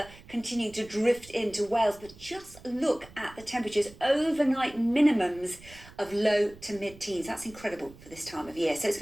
continuing to drift into Wales, but just look at the temperatures. Overnight minimums of low to mid-teens. That's incredible for this time of year. So it's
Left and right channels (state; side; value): noise; right; rumble, 20 dB below the sound